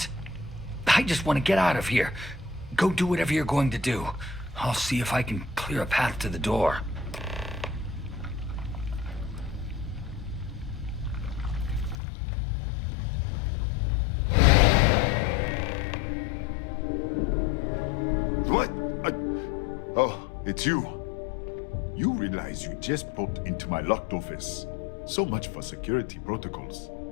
I just want to get out of here. Go do whatever you're going to do. I'll see if I can clear a path to the door. What? Oh, it's you. You realize you just popped into my locked office. So much for security protocols.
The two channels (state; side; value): drops out; right; at 12.0 s